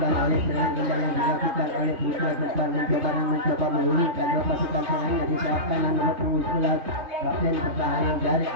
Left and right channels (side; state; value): left; late; 3.7 ms